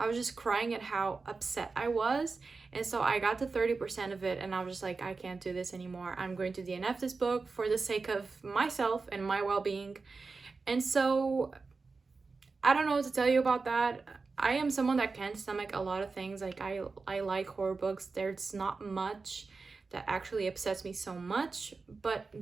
was just crying at how upset I was. And so I got to 30% of it and I was just like, I can't do this anymore. I'm going to DNF this book for the sake of myself and my well-being. And so I don't know what to tell you about that. I am someone that can stomach a lot of things. Like I like horror books. There's not much that actually upsets me so much, but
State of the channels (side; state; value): left; quieter; 4.2 dB